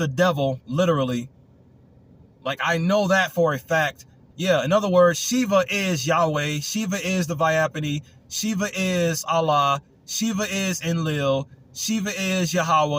devil, literally. Like, I know that for a fact. Yeah, in other words, Shiva is Yahweh. Shiva is the Vyapani. Shiva is Allah. Shiva is Enlil. Shiva is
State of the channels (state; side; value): identical; both; correlation 1.00